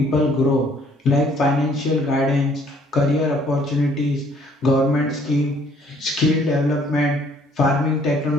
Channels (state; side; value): normal; both; correlation 0.61